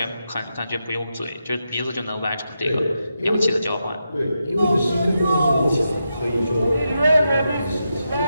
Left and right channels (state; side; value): inverted; both; correlation -0.86